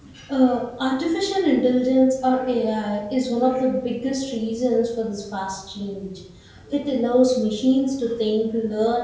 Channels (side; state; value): both; identical; correlation 1.00